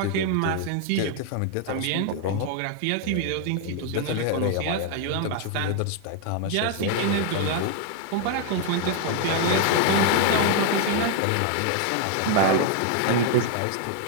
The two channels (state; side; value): different; both; correlation 0.00